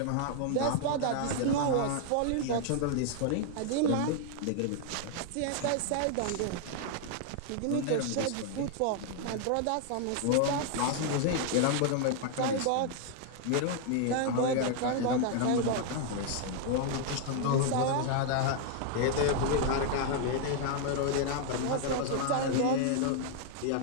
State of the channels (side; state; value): both; different; correlation 0.00